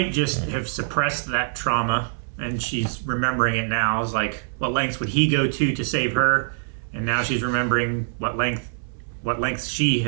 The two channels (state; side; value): silent; left; 60 dB below the other